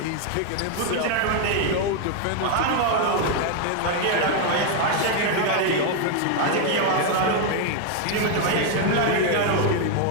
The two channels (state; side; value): different; both; correlation 0.01